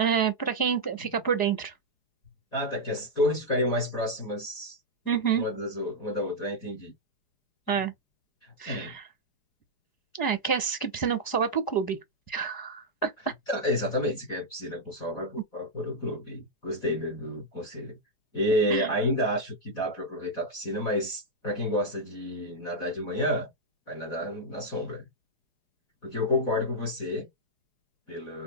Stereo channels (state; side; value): late; right; 4.8 ms